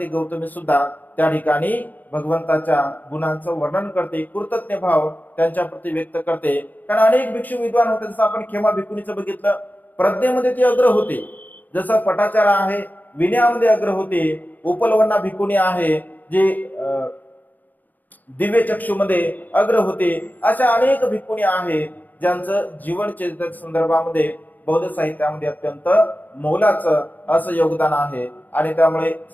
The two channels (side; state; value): right; late; 0.084 ms